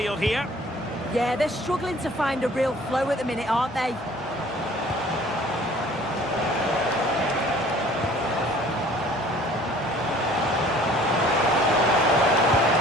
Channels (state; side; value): normal; both; correlation 0.52